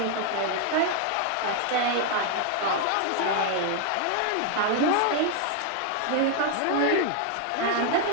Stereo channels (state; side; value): different; both; correlation 0.00